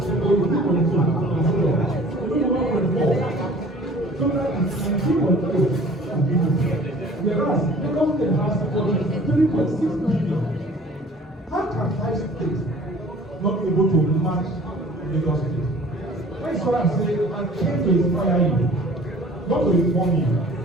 so 2.2, and so on. So 1.4. So that is 2.8 of GDP. Whereas Lagos State has 3.6 billion. How can 5 states not be able to match Lagos State? That's what I'm saying. I came to inspire you, not to inform you.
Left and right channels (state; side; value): normal; both; correlation 0.49